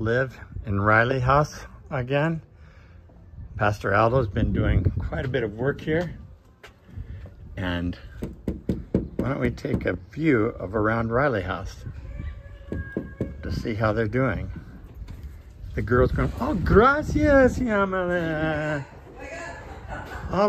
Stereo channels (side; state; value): both; identical; correlation 1.00